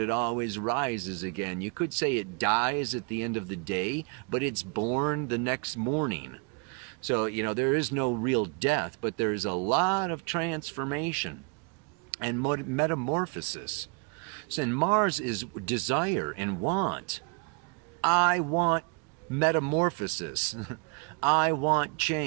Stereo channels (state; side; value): quieter; left; 34.5 dB